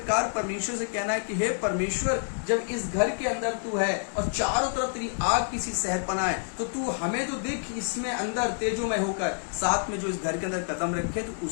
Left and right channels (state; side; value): silent; right; 59 dB below the other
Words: परमेश्वर से कहना है कि हे परमेश्वर, जब इस घर के अंदर तू है और चारों तरफ तेरी आग की सी शहरपना है, तो तू हमें तो देख इसमें अंदर तेजोमय होकर, साथ में जो इस घर के अंदर कदम रखे तो